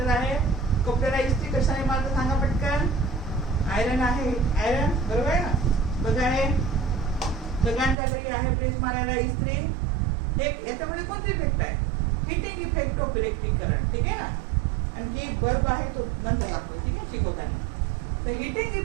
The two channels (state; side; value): drops out; left; at 8.0 s